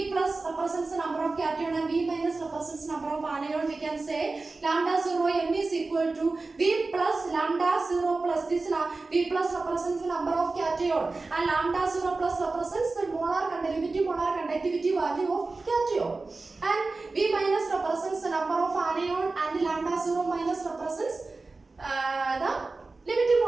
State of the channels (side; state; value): left; quieter; 3.6 dB